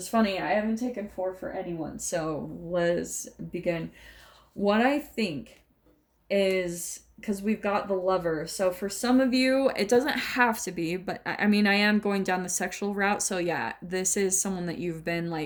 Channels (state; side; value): identical; both; correlation 1.00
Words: funny. I haven't taken 4 for anyone, so let's begin. What I think is, because we've got the Lover, so for some of you, it doesn't have to be, but I mean, I am going down the sexual route, so yeah, this is someone that you've been